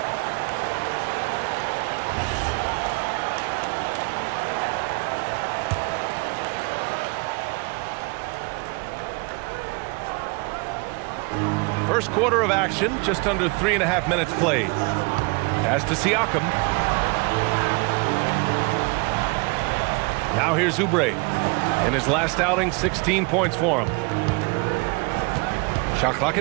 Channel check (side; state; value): left; quieter; 29.4 dB